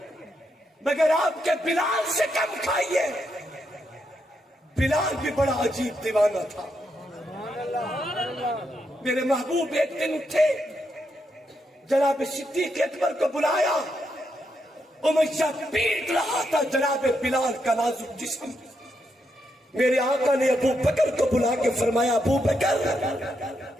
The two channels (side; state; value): both; normal; correlation 0.81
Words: مگر آپ کے بلال سے کم کھائیے. بلال بھی بڑا عجیب دیوانہ تھا. میرے محبوب ایک دن اٹھے، جناب صدیق اکبر کو بلایا. امیہ پیٹ رہا تھا جناب بلال کا نازک جسم. میرے آقا نے ابو بکر کو بلا کے فرمایا ابو بکر